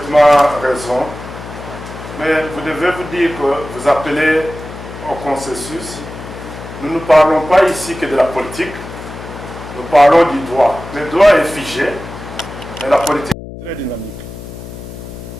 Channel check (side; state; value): left; noise; hum, 12 dB below the sound